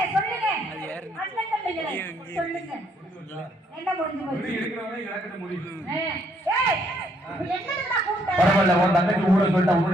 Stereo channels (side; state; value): both; normal; correlation 0.70